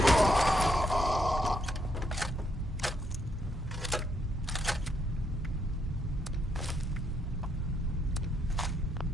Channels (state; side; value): normal; both; correlation 0.75